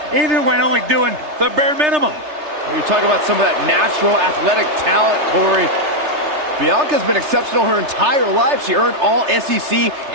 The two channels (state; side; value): late; left; 3.3 ms